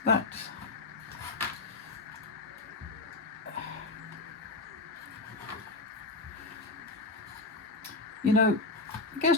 That. You know, it gets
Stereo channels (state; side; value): quieter; right; 3.3 dB